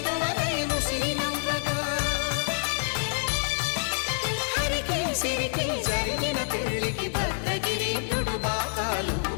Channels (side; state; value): right; silent; digital silence